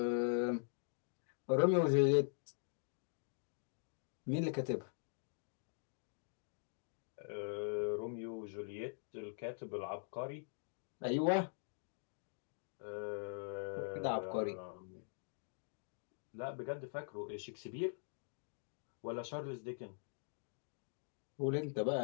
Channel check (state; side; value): silent; right; digital silence